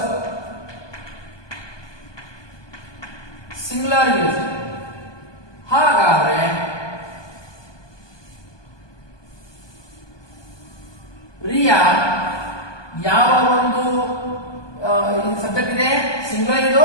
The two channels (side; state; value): right; late; 1.2 ms